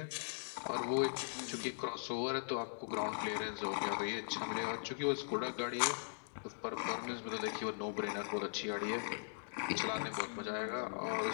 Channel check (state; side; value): silent; right; digital silence